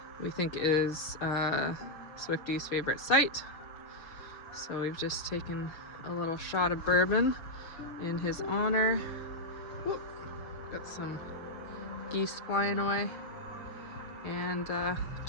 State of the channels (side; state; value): right; late; 6.9 ms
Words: we think is Swifty's favorite site. So we've just taken a little shot of bourbon in his honor. Whoop. Got some geese flying away. And